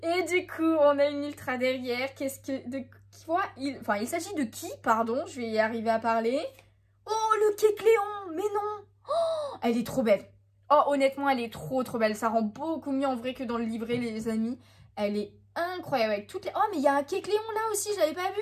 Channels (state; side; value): identical; both; correlation 1.00